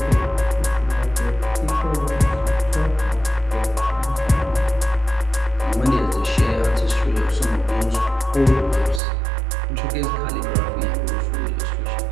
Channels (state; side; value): drops out; left; at 9.0 s